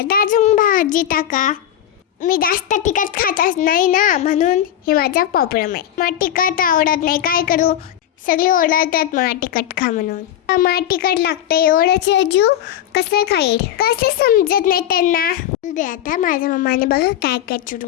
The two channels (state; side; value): quieter; right; 11.2 dB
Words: तर अजून भाजी टाका. मी जास्त तिखट खातच नाही ना, म्हणून हे माझा प्रॉब्लेम आहे. मला तिखट आवडत नाही, काय करू. सगळे ओरडतात मला तिखट खा म्हणून. मला तिखट लागतं, एवढं जीव कसं खाईल, कसं समजत नाही त्यांना. दे आता माझ्या मम्माने बघा काय काय